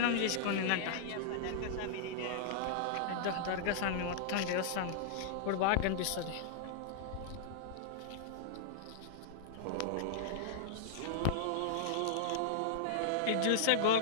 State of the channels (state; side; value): different; both; correlation -0.01